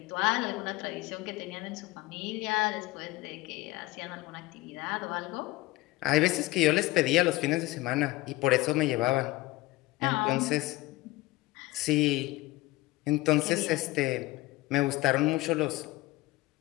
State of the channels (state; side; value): quieter; right; 19.4 dB